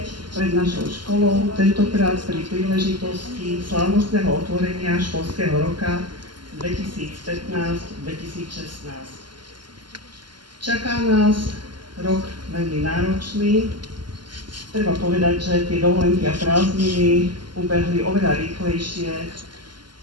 pred našou školou, tentokrát pri príležitosti slávnostného otvorenia školského roka 2015-2016. Čaká nás rok veľmi náročný. Treba povedať, že tie dovolenky a prázdniny ubehli oveľa rýchlejšie,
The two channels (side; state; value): left; late; 0.71 ms